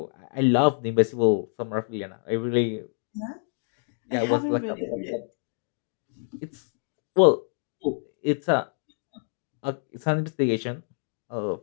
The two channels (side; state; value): right; silent; digital silence